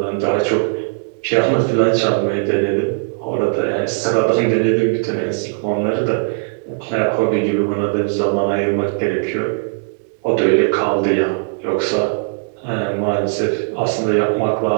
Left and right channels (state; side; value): silent; left; digital silence